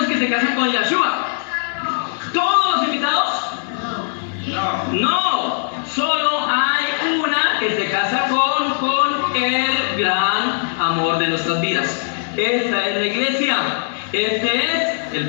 que se casan con Yeshua? ¿Todos los invitados? No. Solo hay una que se casa con el gran de nuestras vidas. Esta es la iglesia. Este es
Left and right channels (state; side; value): silent; right; digital silence